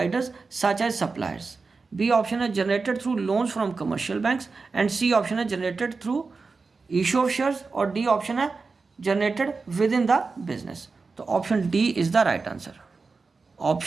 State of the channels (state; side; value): quieter; left; 4.3 dB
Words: such as suppliers. B option है generated through loans from commercial banks and C option है generated through issue of shares और D option है generated with in the business. तो option D is the right answer.